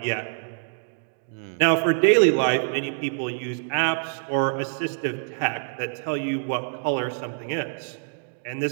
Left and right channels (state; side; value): silent; left; 61 dB below the other